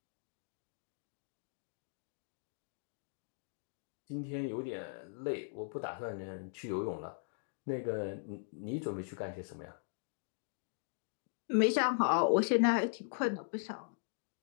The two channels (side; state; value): right; silent; digital silence